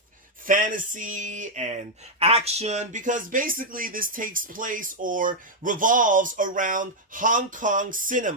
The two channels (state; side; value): normal; both; correlation -0.02